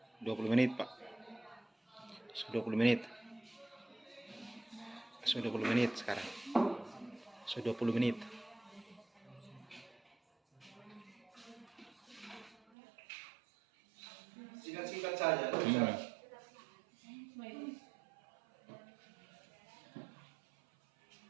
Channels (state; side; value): drops out; left; at 12.6 s